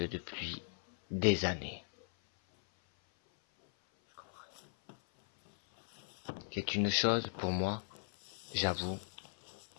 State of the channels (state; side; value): silent; right; 53 dB below the other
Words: depuis des années. C'est une chose pour moi, j'avoue,